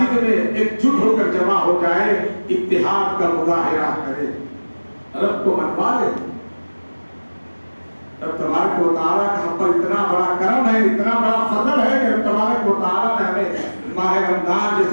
میں ایک جٹ ہو کر جمع ہو جائے، اتحاد کا مظاہرہ کرے، رب کو منوا لے۔ رب تبارک و تعالیٰ کا ہم پر اتنا بڑا کرم ہے، اتنا بڑا فضل ہے کہ رب تبارک و تعالیٰ نے ہمیں ماہ رمضان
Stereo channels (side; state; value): both; inverted; correlation -1.00